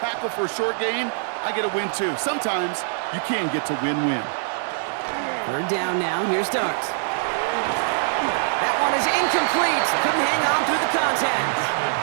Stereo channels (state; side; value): silent; left; 63 dB below the other